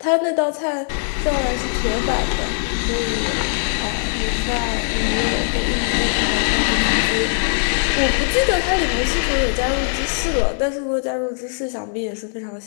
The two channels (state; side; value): silent; right; digital silence